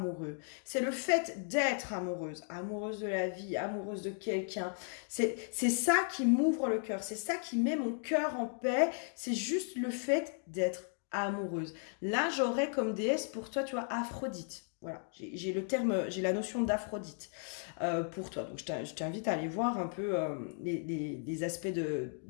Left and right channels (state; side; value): silent; right; 54 dB below the other